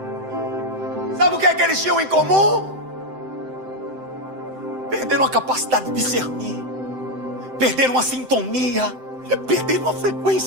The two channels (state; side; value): late; left; 7.8 ms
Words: Sabe o que é que eles tinham em comum? Perderam a capacidade de discernir. Perderam a sintonia. Perderam a